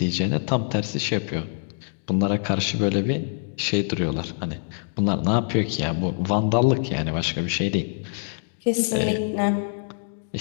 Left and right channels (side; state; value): right; silent; digital silence